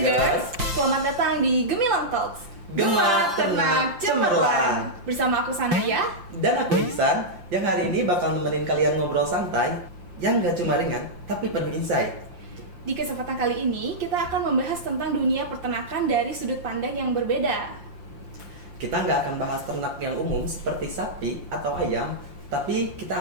selamat datang di Gemilang Talks. Gema, Ternak, Cemerlang. Bersama aku Sanaya. Dan aku Ihsan, yang hari ini bakal nemenin kalian ngobrol santai yang gak cuma ringan, tapi penuh insight. Di kesempatan kali ini, kita akan membahas tentang dunia peternakan dari sudut pandang yang berbeda. Kita nggak akan bahas ternak yang umum seperti sapi atau ayam, tapi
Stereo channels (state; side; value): late; left; 5.8 ms